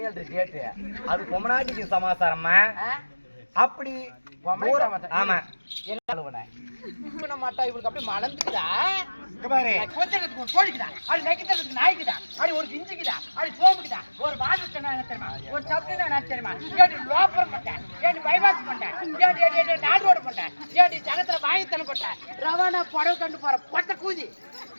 டேட்டு. அது பொம்மநாட்டிக்கு சமாச்சாரம்மா. அப்படி ஆமா என்ன மாட்டா இவளுக்கு அப்படி மலர்ந்துக்குதா? பாரு கொஞ்சத்துக்கு ஒரு கோழிக்குதா, அது நெக்கித்ததுக்கு நாய்க்குதா, அது ஒரு கிஞ்சிக்குதா, அது சோப்புக்குதா, ஒரு வாசத்தை தெரியுமா, ஒரு சப்னா நான் தெரியுமா, ஏடி லோப்பரம் பண்ணேன், ஏடி பைபாஸ் பண்ணேன், ஏடி நாடு ரோடு பண்ணேன், ஏடி ஜனத்துல வாங்கித்தன போட்டேன், ரவானா புடவை கண்டு போற பொட்ட கூதி.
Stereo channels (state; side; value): inverted; both; correlation -1.00